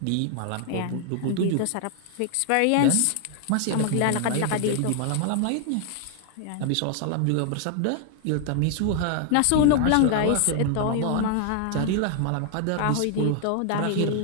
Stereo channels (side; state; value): both; different; correlation 0.00